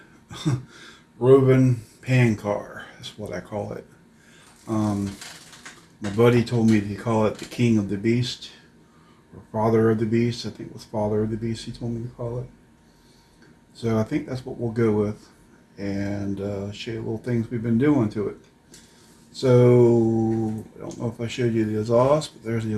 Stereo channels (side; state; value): both; identical; correlation 1.00